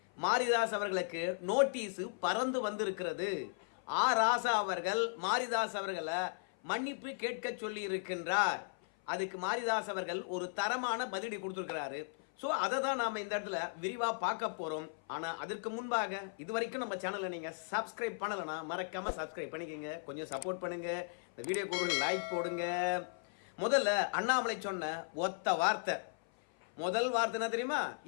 மாரிதாஸ் அவர்களுக்கு நோட்டீஸ் பறந்து வந்திருக்கிறது. ராசா அவர்கள் மாரிதாஸ் அவர்களை மன்னிப்பு கேட்க சொல்லி இருக்கின்றார். அதுக்கு மாரிதாஸ் அவர்கள் ஒரு தரமான பதிலடி கொடுத்திருக்கிறாரு. ஸோ அதை தான் நாம இந்த இடத்துல விரிவா பார்க்க போறோம். ஆனா அதற்கு முன்பாக இதுவரைக்கும் நம்ம சேனலை நீங்க சப்ஸ்கிரைப் பண்ணலனா மறக்காம சப்ஸ்கிரைப் பண்ணிக்கங்க, கொஞ்சம் சப்போர்ட் பண்ணுங்க, இந்த வீடியோக்கு ஒரு லைக் போடுங்க. முதல்ல அண்ணாமலை சொன்ன ஒத்த வார்த்தை, முதல் வார்த்தை என்ன தெரியுமா?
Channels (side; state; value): right; silent; 53 dB below the other